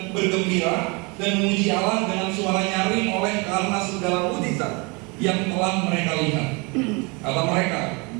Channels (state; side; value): quieter; left; 29.2 dB